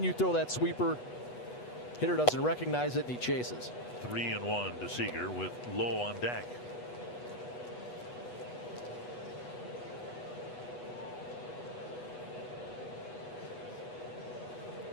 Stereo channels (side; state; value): right; late; 8.2 ms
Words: you throw that sweeper. Hitter doesn't recognize it, and he chases. 3-1 to Seager with Lowe on deck.